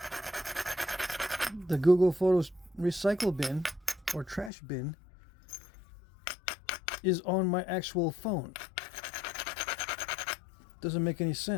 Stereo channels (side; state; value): right; drops out; at 4.5 s